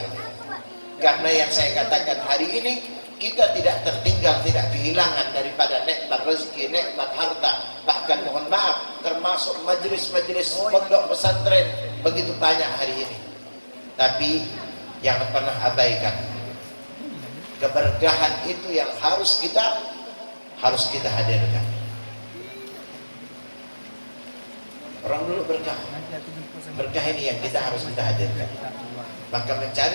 Karena yang saya katakan hari ini, kita tidak tertinggal, tidak kehilangan daripada nikmat rezeki, nikmat harta. Bahkan mohon maaf, termasuk majelis-majelis pondok pesantren begitu banyak hari ini. Tapi jangan pernah abaikan keberkahan itu yang harus kita hadirkan. Orang dulu berkah ini yang harus kita hadirkan. Maka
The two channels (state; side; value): inverted; both; correlation -1.00